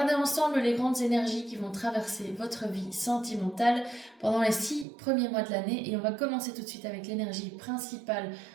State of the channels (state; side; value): drops out; left; at 4.9 s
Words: ensemble les grandes énergies qui vont traverser votre vie sentimentale pendant les 6 premiers mois de l'année et on va commencer tout de suite avec l'énergie principale